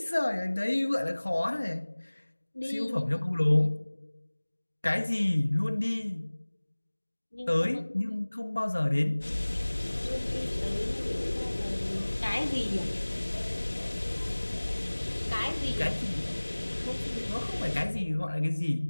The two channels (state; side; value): inverted; both; correlation -1.00